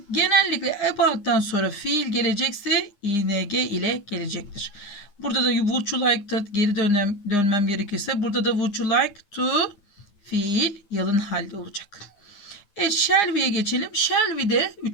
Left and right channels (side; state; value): right; late; 9.8 ms